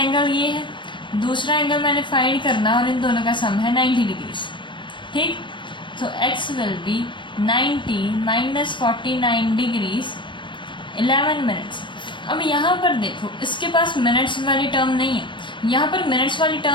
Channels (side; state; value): right; late; 0.23 ms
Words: ये है, दूसरा एंगल मैंने फाइंड करना, और इन दोनों का सम है 90 डिग्रीज। ठीक, तो x will B 90 minus 49 degrees 11 minutes. अब यहाँ पर देखो, इसके पास मिनट्स वाली टर्म नहीं है, यहाँ पर मिनट्स वाली